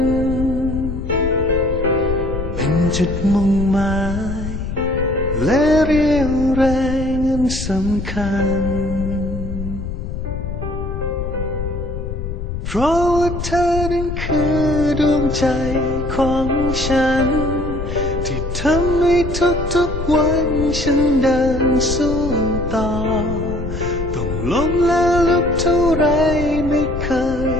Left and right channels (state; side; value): noise; left; rumble, 6 dB below the sound